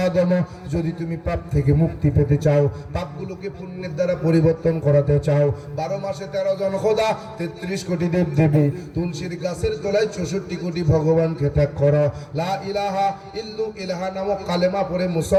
যদি তুমি পাপ থেকে মুক্তি পেতে চাও, পাপগুলোকে পুণ্যের দ্বারা পরিবর্তন করাতে চাও, 12 মাসে 13 জন খোদা, 33 কোটি দেব দেবী, তুলসীর গাছের তলায় 64 কোটি ভগবানকে ত্যাগ করো, লা ইলাহা ইল্লু ইলাহা নামক কালেমা পড়ে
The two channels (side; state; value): both; identical; correlation 1.00